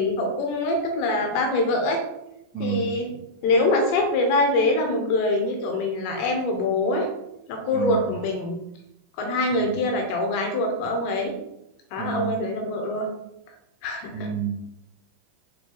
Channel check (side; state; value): right; late; 15 ms